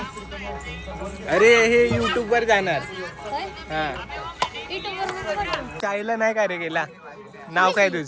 अरे हे युट्यूब वर जाणार. हा शाळेला नाही का रे गेला. नाव काय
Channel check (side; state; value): both; identical; correlation 1.00